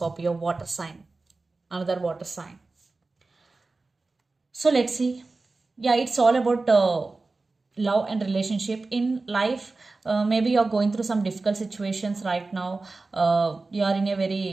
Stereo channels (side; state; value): left; quieter; 3.6 dB